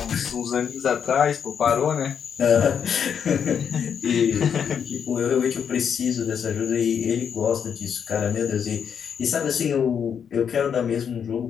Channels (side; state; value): right; quieter; 7.6 dB